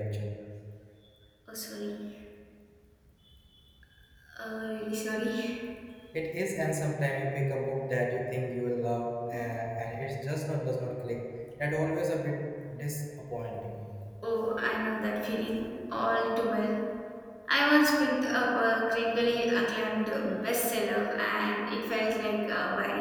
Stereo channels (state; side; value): identical; both; correlation 1.00